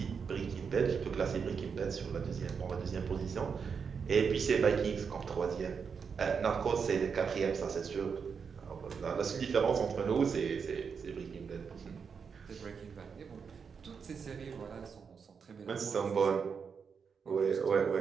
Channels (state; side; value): quieter; left; 6.1 dB